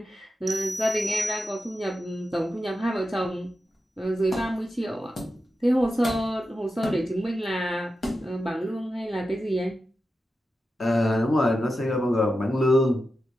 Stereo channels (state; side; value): normal; both; correlation 0.90